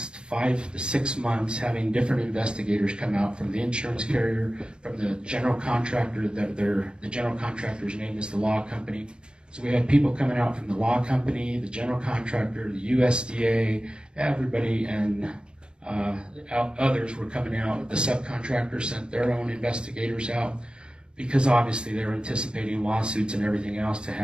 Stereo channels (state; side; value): late; left; 0.054 ms